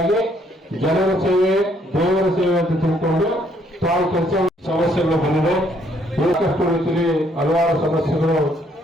ಜನರ ಸೇವೆ ದೇವರ ಸೇವೆ ಅಂತ ತಿಳ್ಕೊಂಡು ತಾವು ಕೆಲಸ. ಸಮಸ್ಯೆಗಳು ಬಂದಿದೆ, ಏಕಷ್ಟು ರೀತಿಯಲ್ಲಿ ಹಲವಾರು ಸಮಸ್ಯೆಗಳು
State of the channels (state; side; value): normal; both; correlation 0.68